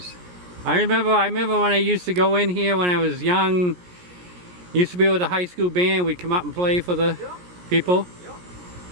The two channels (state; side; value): late; left; 17 ms